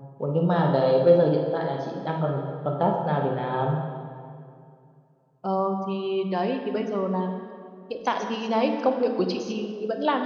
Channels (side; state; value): both; identical; correlation 1.00